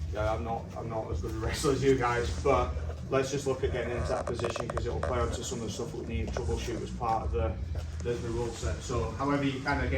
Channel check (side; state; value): both; identical; correlation 1.00